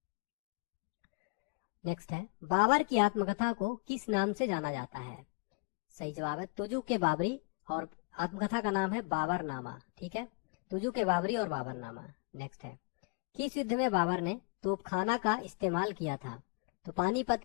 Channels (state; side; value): quieter; right; 30.1 dB